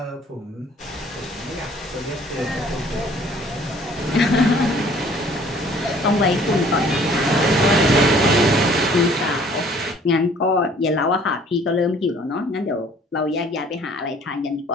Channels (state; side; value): normal; both; correlation 0.55